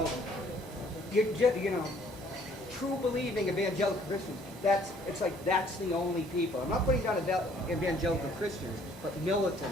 true believing evangelical Christians. It's like that's the only people. I'm not putting down evangelical Christians, but militant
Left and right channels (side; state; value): both; normal; correlation 0.60